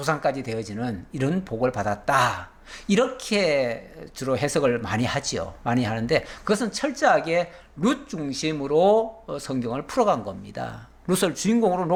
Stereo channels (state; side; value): identical; both; correlation 1.00